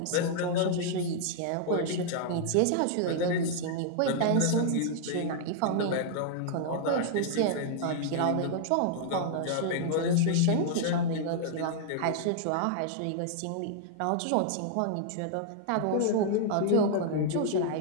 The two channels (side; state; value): both; different; correlation -0.01